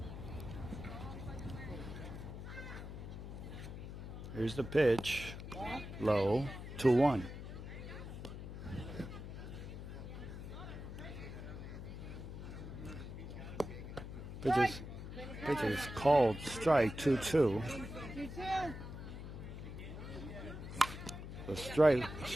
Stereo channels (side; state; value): left; noise; hum, 9 dB below the sound